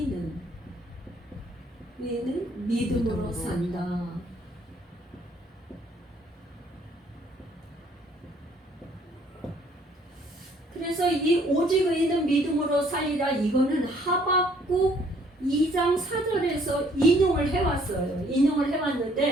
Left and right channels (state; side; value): normal; both; correlation 0.62